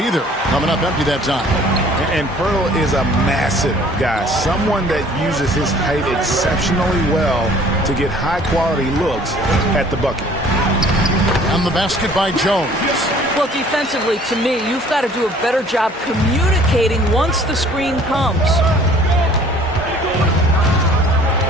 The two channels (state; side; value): normal; both; correlation 0.53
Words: Coming up empty that time. And Pirtle is a massive guy, someone that uses his height exceptionally well to get high-quality looks at the bucket. And the basket by Jones. Well, defensively, to me, you've got to do a better job communicating once the screen comes.